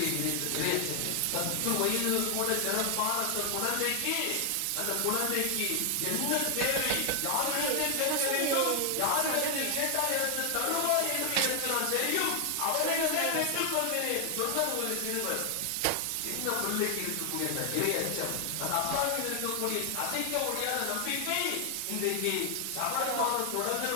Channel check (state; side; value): different; both; correlation 0.00